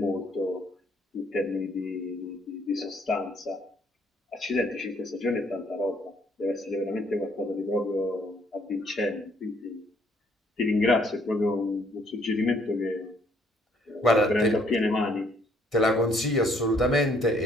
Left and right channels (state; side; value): normal; both; correlation 0.66